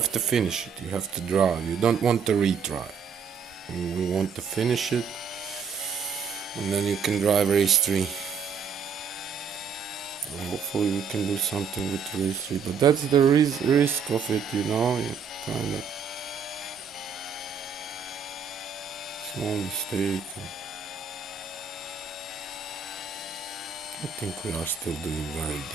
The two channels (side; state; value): left; quieter; 6.3 dB